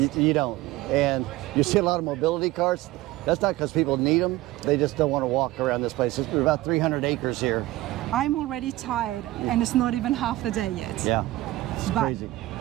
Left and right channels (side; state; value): left; quieter; 17.6 dB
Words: You don't. And you see a lot of mobility cars. That's not because people need them. They just don't want to walk around this place. It's about 300 acres here. I'm already tired, and it's not even half the day yet. Yeah. It's crazy.